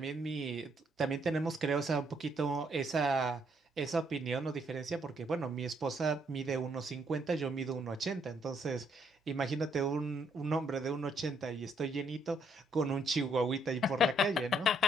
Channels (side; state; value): both; normal; correlation 0.71